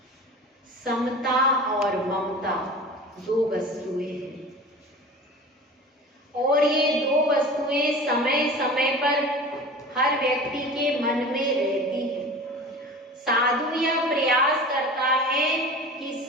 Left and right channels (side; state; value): both; normal; correlation 0.37